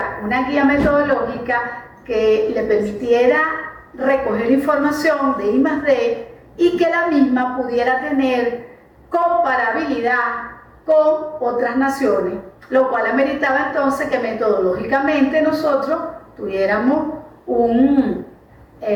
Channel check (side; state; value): both; identical; correlation 1.00